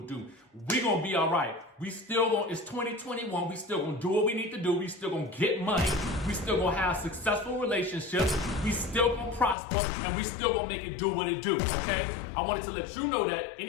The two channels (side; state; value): right; drops out; at 9.6 s